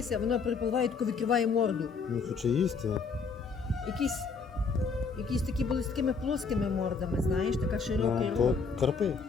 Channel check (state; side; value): quieter; right; 4.9 dB